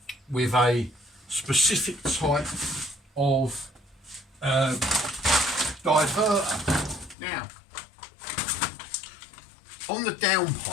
with a specific type of diverter. Now, on the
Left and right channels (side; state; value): right; drops out; at 7.2 s